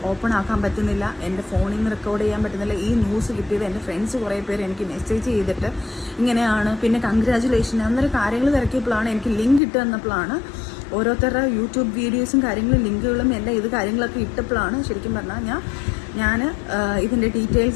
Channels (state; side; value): drops out; right; at 9.6 s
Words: ഓപ്പൺ ആക്കാൻ പറ്റുന്നില്ല, എൻ്റെ ഫോണിൽ നിന്ന് റെക്കോർഡ് ചെയ്യാൻ പറ്റുന്നില്ല. ഈ ന്യൂസ് കിട്ടിയത് എൻ്റെ ഫ്രണ്ട്സ് കുറേ പേര് എനിക്ക് മെസ്സേജ് ചെയ്തിട്ട് ഇങ്ങനെയാണ്, പിന്നെ കൺഗ്രാജുലേഷൻ അന്നേരം കാര്യങ്ങൾ തിരക്കിയപ്പോഴാണ് എനിക്ക് ലിങ്ക് ഇട്ട് തന്നപ്പോഴാണ് ഓരോരുത്തരുടെ യൂട്യൂബ് വീഡിയോസും കാര്യങ്ങളും ലിങ്കുകളും എല്ലാം ഇത് കാര്യങ്ങളൊക്കെ ഇട്ടപ്പോഴാണ് ശരിക്കും പറഞ്ഞാൽ ഞാൻ ഇതിൻ്റെ